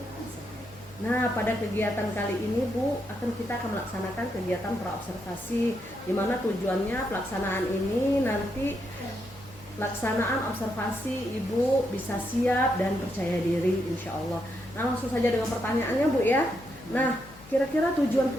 Nah, pada kegiatan kali ini Bu, kita akan melaksanakan kegiatan pra-observasi, di mana tujuannya pelaksanaan ini nanti pelaksanaan observasi Ibu bisa siap dan percaya diri insya Allah. Nah, langsung saja dengan pertanyaannya Bu ya. Nah, kira-kira tujuan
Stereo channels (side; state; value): left; noise; hum, 21 dB below the sound